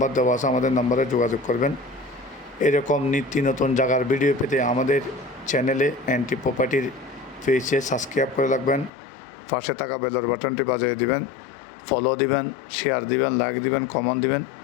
দেওয়া আছে আমাদের নাম্বারে যোগাযোগ করবেন। এরকম নিত্য নতুন জায়গার ভিডিও পেতে আমাদের চ্যানেলে এনটি প্রপার্টির পেজে সাবস্ক্রাইব করে রাখবেন। পাশে থাকা বেলের বাটনটি বাজিয়ে দিবেন, ফলো দিবেন, শেয়ার দিবেন, লাইক দিবেন, কমেন্ট দিবেন।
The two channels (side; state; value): right; drops out; at 8.9 s